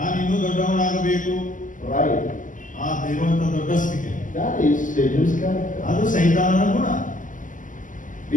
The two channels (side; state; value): right; late; 0.38 ms